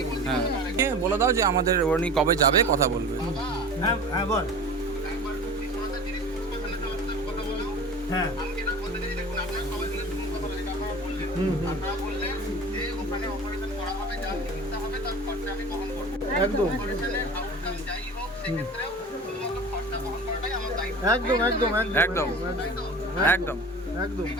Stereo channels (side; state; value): both; normal; correlation 0.37